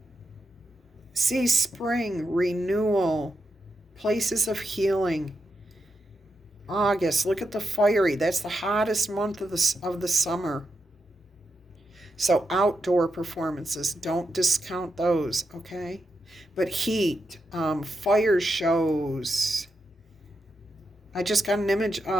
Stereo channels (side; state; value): both; normal; correlation 0.86